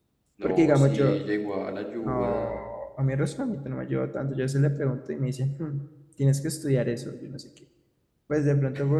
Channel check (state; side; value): identical; both; correlation 1.00